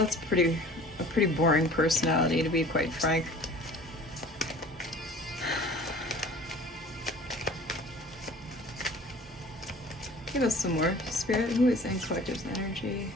pretty boring personality, to be quite frank. Give us some more. Spirit, who is in collective's energy?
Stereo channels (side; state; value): both; normal; correlation 0.45